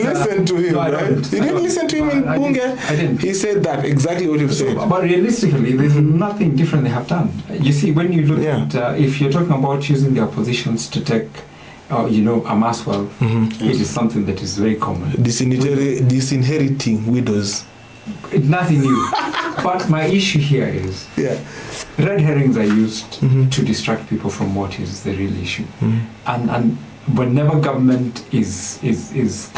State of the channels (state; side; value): identical; both; correlation 1.00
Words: to him, no, right? You didn't listen to him in Bunge? I didn't. He said that, exactly what you've said. But realistically, there's nothing different they have done. You see, when you look at, if you're talking about using their positions to take, amass wealth, it is something that is very common. Disinheriting widows. It's nothing new. But my issue here is red herrings are used to distract people from what is the real issue. And whenever government is